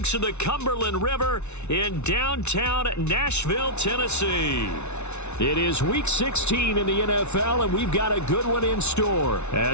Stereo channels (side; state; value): right; late; 0.81 ms